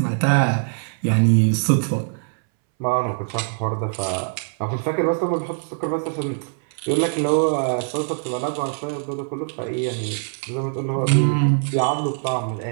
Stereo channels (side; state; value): left; silent; 62 dB below the other